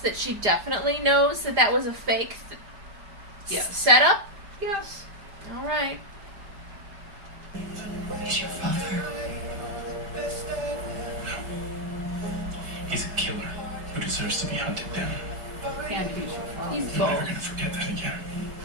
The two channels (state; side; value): late; left; 4.9 ms